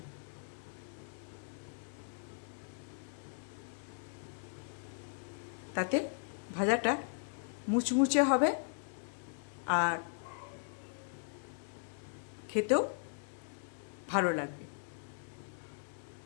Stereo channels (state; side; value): silent; right; digital silence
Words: তাতে ভাজাটা মুচমুচে হবে আর খেতেও ভালো লাগবে।